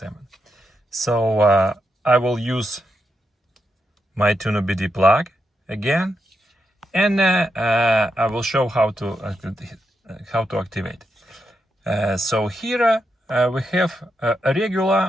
So I will use my tuneOBD plug again, and I will show how to activate. So here we have a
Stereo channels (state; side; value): normal; both; correlation 0.84